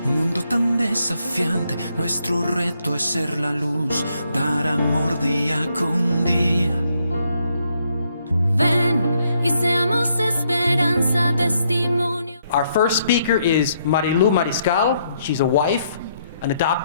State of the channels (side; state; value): both; inverted; correlation -0.74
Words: Un mundo tan desafiante, nuestro reto es ser la luz, dar amor día con día. Ven y seamos esperanza, testimonio. Our first speaker is Marilu Mariscal. She's a wife, an